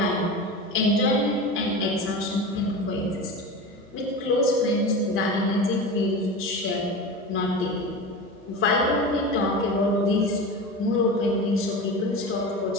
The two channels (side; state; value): both; normal; correlation 0.28